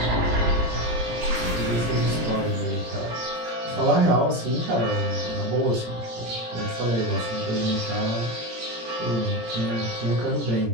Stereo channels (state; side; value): late; left; 17 ms